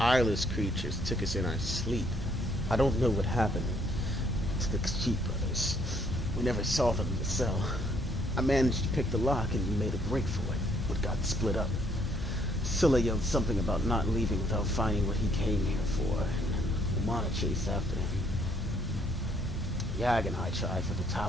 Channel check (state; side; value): normal; both; correlation 0.67